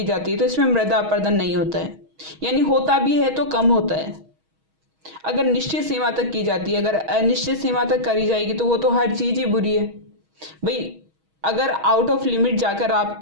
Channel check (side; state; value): left; late; 6.3 ms